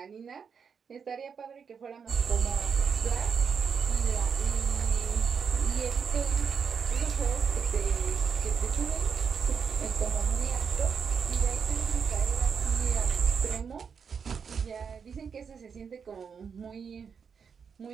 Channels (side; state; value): left; quieter; 6.4 dB